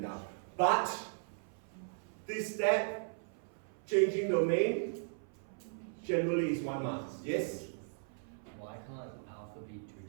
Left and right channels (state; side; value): silent; left; 53 dB below the other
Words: down. But this step, changing domain, generally is 1 mark. Yes? Why can't alpha be